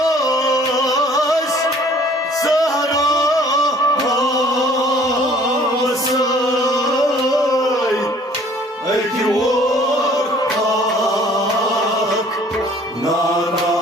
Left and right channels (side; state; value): both; normal; correlation 0.55